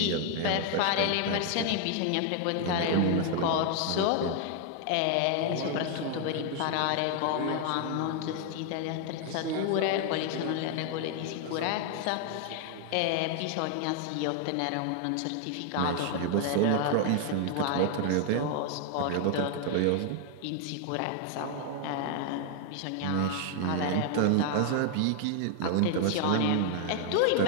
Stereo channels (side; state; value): both; different; correlation 0.00